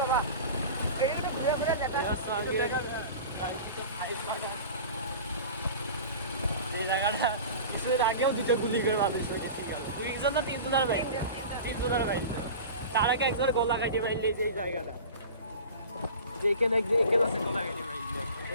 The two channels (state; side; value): inverted; both; correlation -0.36